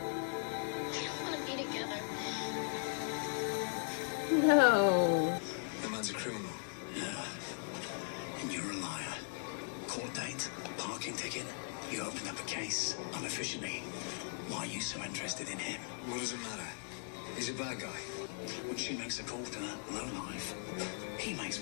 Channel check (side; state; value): right; silent; 52 dB below the other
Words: I don't want to be together. No. The man's a criminal. Yeah. And you're a liar. Court date, parking ticket. You opened up a case unofficially. Why are you so interested in him? What does it matter? He's a bad guy. When she makes a call to that lowlife, he makes